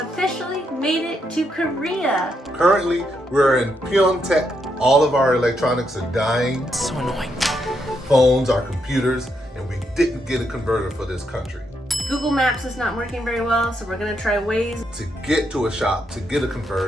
officially made it to Korea. Currently, we're in Pyeongtaek. All of our electronics are dying. So annoying. Phones, our computers, and we didn't get a converter for this country. Google Maps is not working very well, so we're gonna try Waze. To get to a shop, to get a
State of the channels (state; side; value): normal; both; correlation 0.79